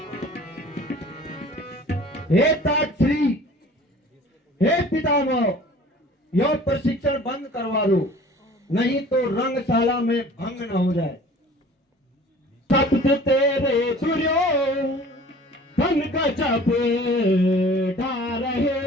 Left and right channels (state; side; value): normal; both; correlation 0.47